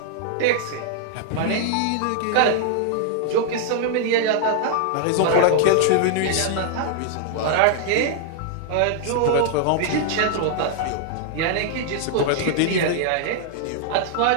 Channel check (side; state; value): both; different; correlation -0.01